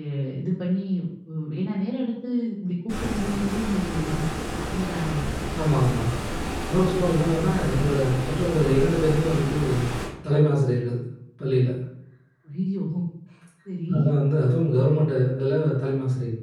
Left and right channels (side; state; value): both; identical; correlation 1.00